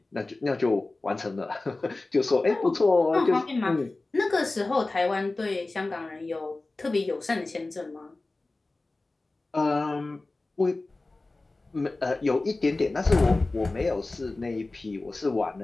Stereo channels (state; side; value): quieter; right; 3.2 dB